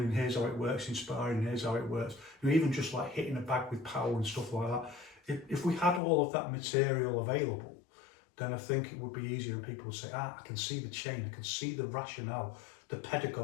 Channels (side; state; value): right; drops out; at 6.0 s